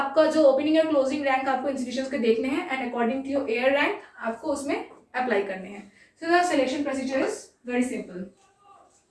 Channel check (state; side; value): identical; both; correlation 1.00